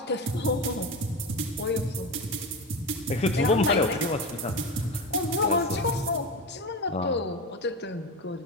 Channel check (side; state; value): both; normal; correlation 0.22